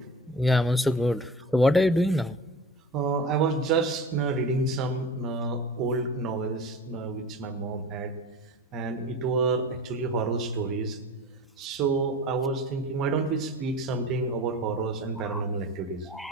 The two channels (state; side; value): normal; both; correlation 0.36